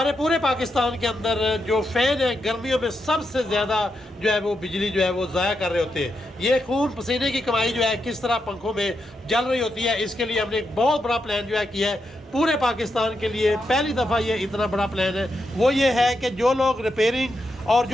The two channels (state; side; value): normal; both; correlation 0.84